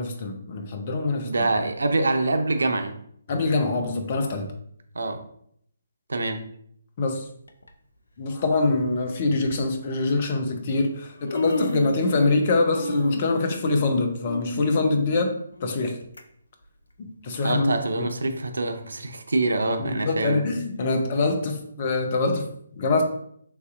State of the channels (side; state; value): both; inverted; correlation -0.76